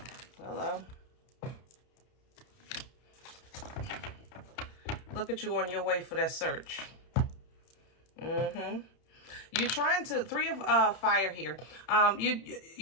Hello. Look at you on your way for that search. You're trying to, three of fire here.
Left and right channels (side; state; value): right; late; 31 ms